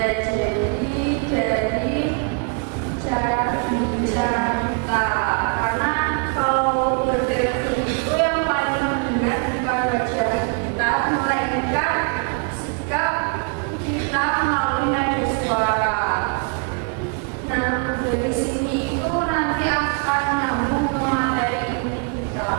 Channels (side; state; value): left; quieter; 37.9 dB